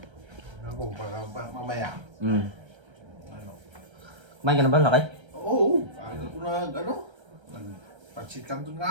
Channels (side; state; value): left; late; 1.3 ms